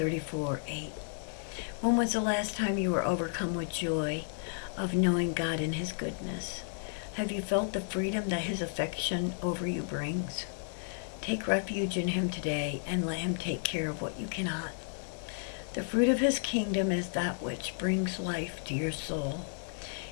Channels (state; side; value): silent; right; digital silence